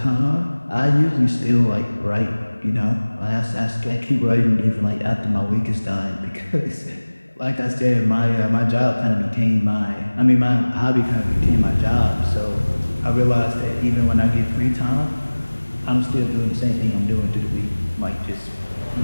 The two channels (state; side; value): inverted; both; correlation -1.00